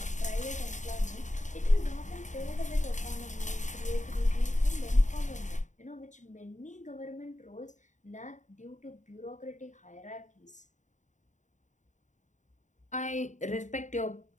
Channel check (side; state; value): right; late; 0.35 ms